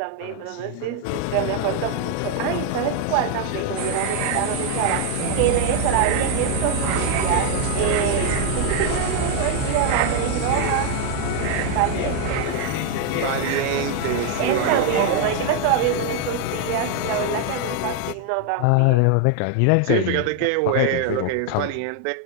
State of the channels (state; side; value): different; both; correlation 0.00